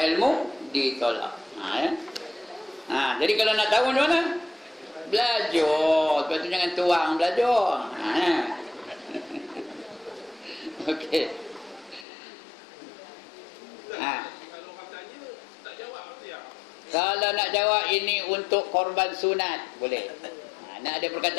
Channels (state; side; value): drops out; right; at 12.1 s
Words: ilmu ditolak. Ya. Jadi kalau nak tahu macam mana? Belajar. Lepas tu jangan tuang belajar. Okey. Kalau katanya tak jawab apa dia? Kalau nak jawab ini untuk korban sunat, boleh. Nak ada